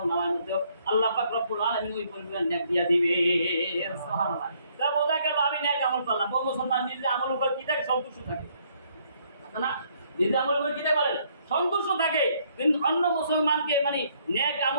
নামার মধ্যে আল্লাহ পাক রব্বুল আলামিন ওই পরিমাণ নেক দিয়া দিবে। সুবহানাল্লাহ। তা বোঝা গেল আমি নেক আমল করলাম। ও মুসলমান নিজে আমলের উপর কি থাকে? সন্তুষ্ট থাকে না? নিজে আমলের উপর কি থাকে বলেন? সন্তুষ্ট থাকে, কিন্তু অন্য মুসলমানকে মানে নেক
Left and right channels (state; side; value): inverted; both; correlation -0.67